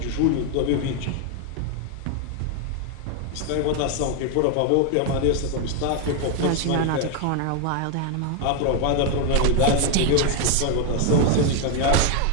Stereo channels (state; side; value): different; both; correlation 0.01